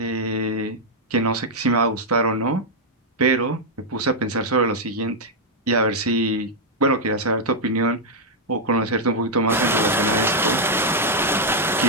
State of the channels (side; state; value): both; normal; correlation -0.02